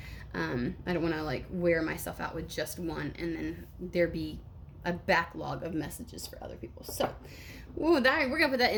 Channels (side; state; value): both; identical; correlation 1.00